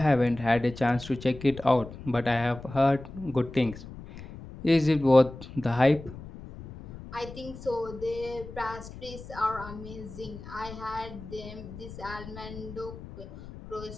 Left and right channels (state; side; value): noise; left; rumble, 14 dB below the sound